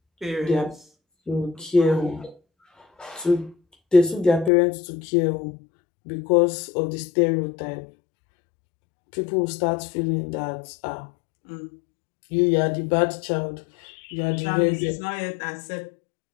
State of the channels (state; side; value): drops out; right; at 4.5 s